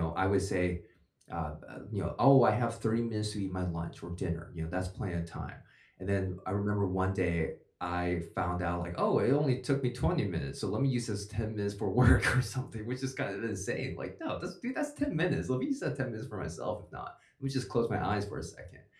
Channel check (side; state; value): both; identical; correlation 1.00